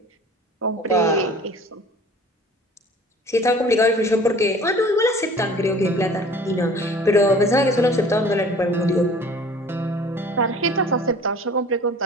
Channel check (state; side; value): normal; both; correlation 0.47